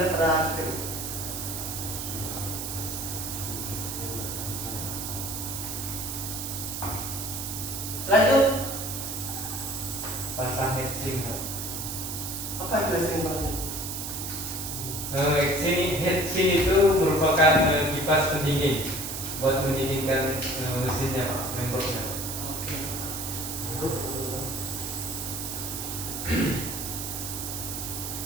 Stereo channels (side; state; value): right; noise; hiss, 5 dB below the sound